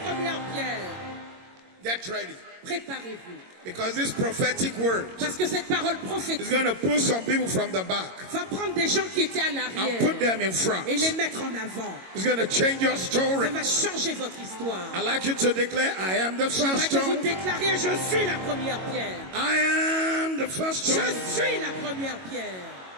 première pierre. Get ready. Préparez-vous. Because this prophetic word Parce que cette parole prophétique is going to pull some people from the back va prendre des gens qui étaient à l'arrière and put them in front. Et les mettre en avant. It's going to change your story. Ça va changer votre histoire. I'd like you to declare, I am the first stone. Vous déclariez, je suis la première pierre. I am the first stone. Je suis la première pierre.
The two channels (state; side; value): late; left; 22 ms